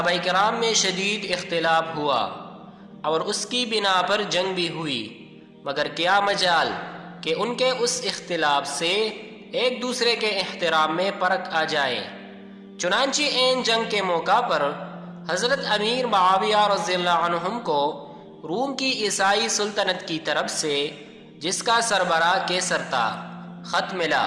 کرام میں شدید اختلاف ہوا اور اس کی بنا پر جنگ بھی ہوئی، مگر کیا مجال کہ ان کے اس اختلاف سے ایک دوسرے کے احترام میں فرق آ جائے۔ چنانچہ این جنگ کے موقع پر حضرت امیر معاویہ رضی اللہ عنہم کو روم کی عیسائی سلطنت کی طرف سے، جس کا سربراہ کیسر تھا، خط ملا۔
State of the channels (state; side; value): identical; both; correlation 1.00